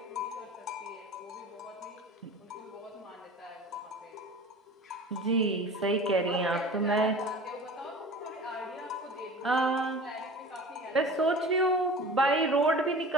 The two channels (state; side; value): normal; both; correlation 0.39